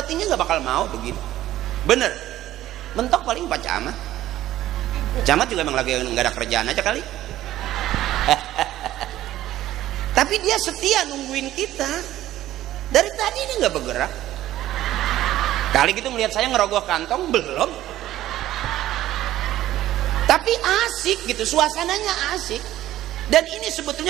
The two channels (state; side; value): quieter; left; 14.1 dB